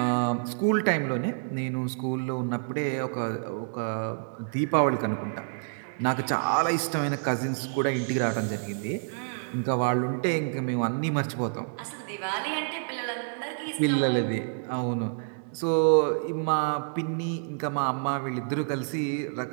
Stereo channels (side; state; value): left; silent; digital silence